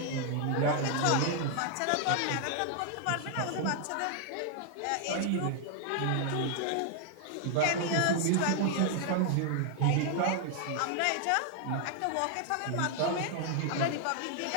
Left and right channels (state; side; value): different; both; correlation 0.00